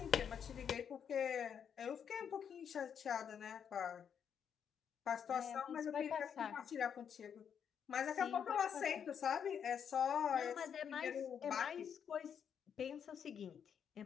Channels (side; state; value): right; quieter; 7.8 dB